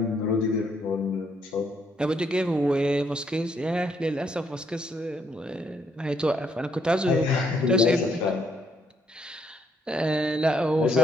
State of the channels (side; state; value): both; normal; correlation 0.73